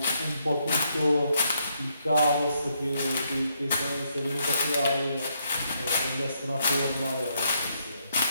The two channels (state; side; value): inverted; both; correlation -0.76